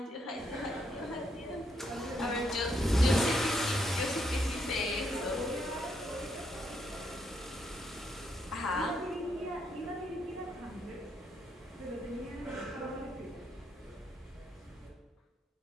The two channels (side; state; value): both; normal; correlation 0.76